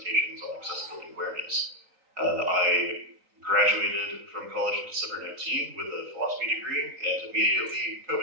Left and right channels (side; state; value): left; late; 3.9 ms